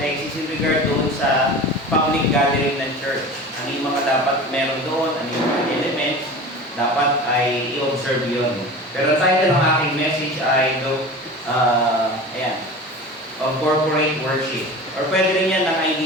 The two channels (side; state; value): both; normal; correlation 0.35